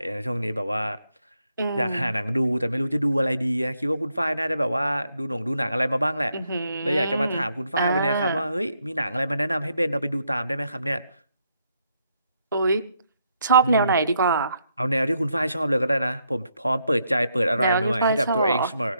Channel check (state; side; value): inverted; both; correlation -0.77